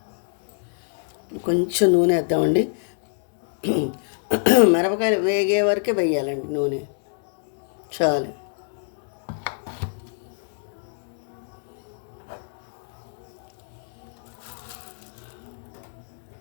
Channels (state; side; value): silent; right; digital silence